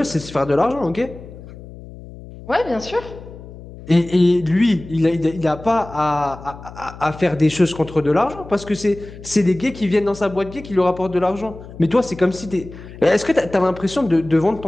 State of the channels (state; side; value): noise; left; hum, 16 dB below the sound